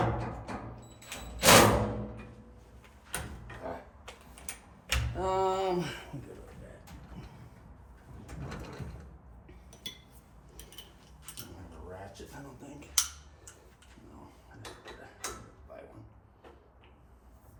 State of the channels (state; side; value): identical; both; correlation 1.00